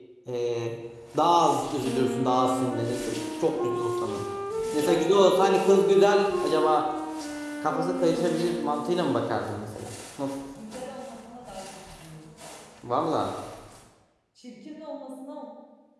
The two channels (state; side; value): identical; both; correlation 1.00